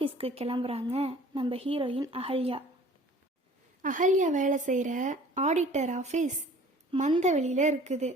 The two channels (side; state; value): both; normal; correlation 0.49